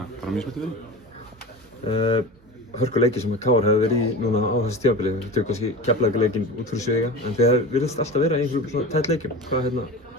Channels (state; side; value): normal; both; correlation 0.31